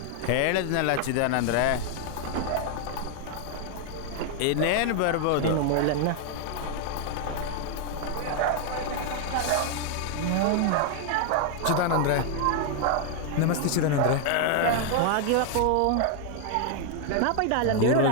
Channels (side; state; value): both; different; correlation 0.00